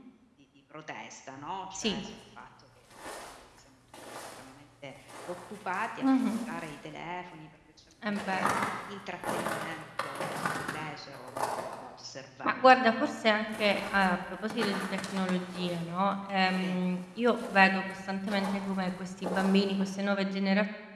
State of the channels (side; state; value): both; identical; correlation 1.00